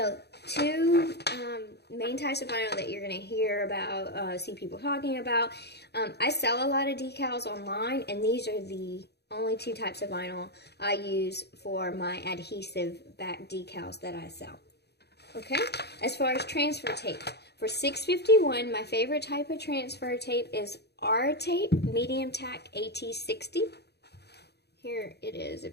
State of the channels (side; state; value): right; late; 0.48 ms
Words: two main types of vinyl that you're going to hear about, see people talking about. I sell a lot of decals online, and these are the only two types of vinyl I use for my adhesive back decals that I sell. Okay, as far as transfer tape, for 651, my favorite type of transfer tape is R tape, medium tack AT60. Here it is